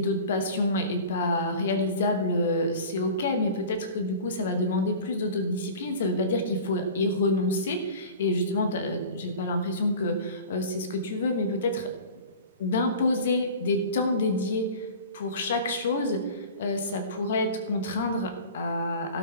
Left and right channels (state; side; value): inverted; both; correlation -0.39